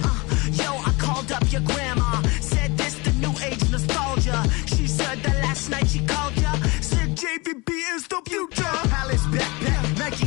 Yo, I called up your grandma. Said this the new age nostalgia. She said that last night she called ya. Said JVB is the future. Palace backpack, Nike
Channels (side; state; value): right; quieter; 25.6 dB